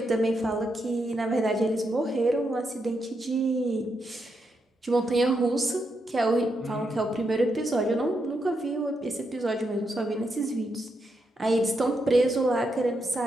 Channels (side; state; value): both; normal; correlation 0.82